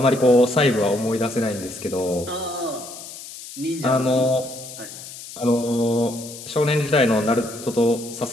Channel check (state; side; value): noise; left; hiss, 13 dB below the sound